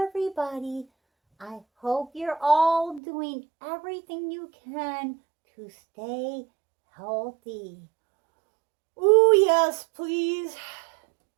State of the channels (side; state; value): left; drops out; at 3.0 s